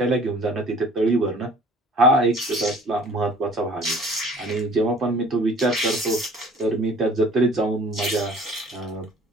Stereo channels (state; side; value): normal; both; correlation 0.50